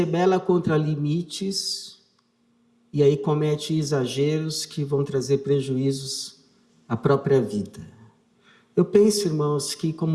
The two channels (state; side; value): identical; both; correlation 1.00